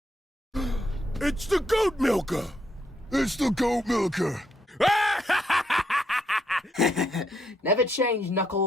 It's the goat milker! It's the goat milker! Never change,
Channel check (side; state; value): both; normal; correlation 0.75